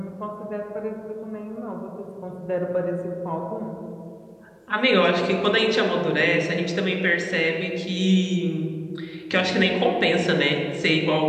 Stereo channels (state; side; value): identical; both; correlation 1.00